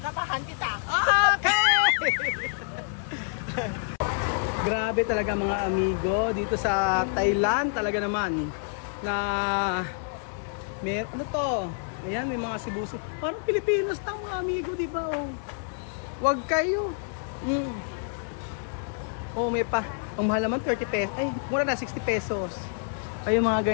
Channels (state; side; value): silent; right; 60 dB below the other